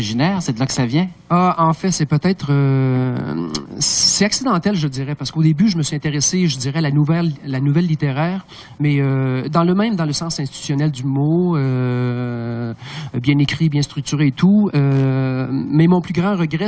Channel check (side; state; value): both; identical; correlation 1.00